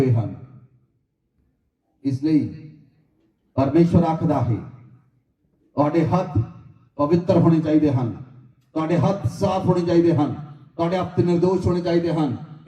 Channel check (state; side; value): identical; both; correlation 1.00